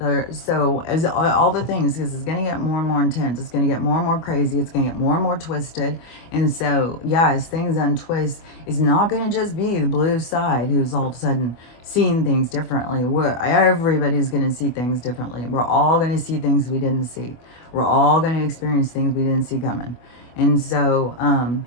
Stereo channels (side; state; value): right; late; 25 ms